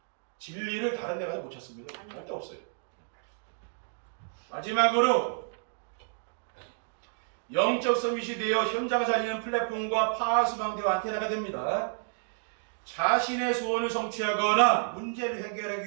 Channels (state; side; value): silent; left; digital silence